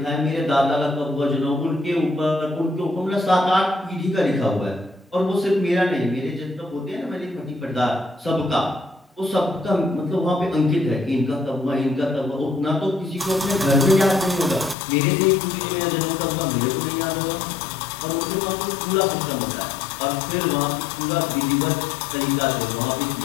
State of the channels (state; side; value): drops out; right; at 14.8 s